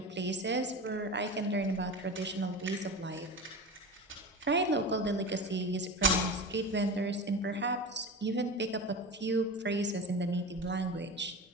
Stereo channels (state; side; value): normal; both; correlation 0.28